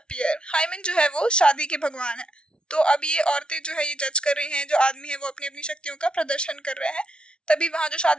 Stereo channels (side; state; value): right; late; 0.056 ms